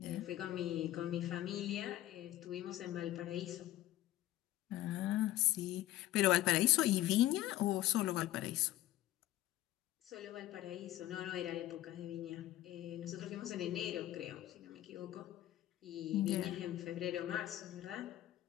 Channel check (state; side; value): quieter; right; 14.6 dB